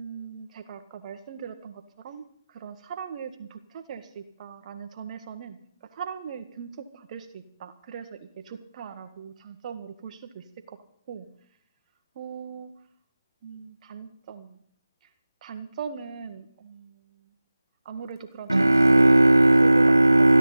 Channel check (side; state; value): both; inverted; correlation -0.98